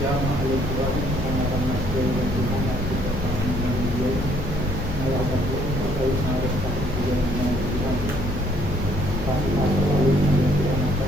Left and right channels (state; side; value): noise; left; hum, 8 dB below the sound